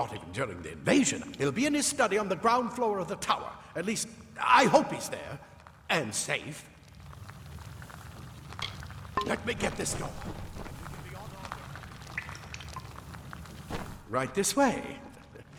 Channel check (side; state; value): both; identical; correlation 1.00